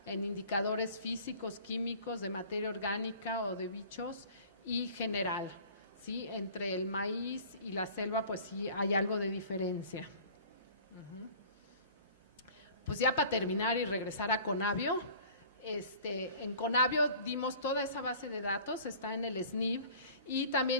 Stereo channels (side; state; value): both; inverted; correlation -0.46